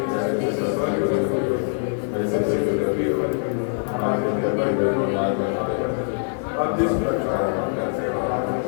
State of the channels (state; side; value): silent; right; digital silence